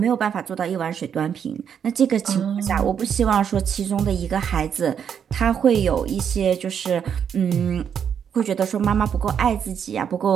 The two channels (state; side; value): quieter; left; 7.9 dB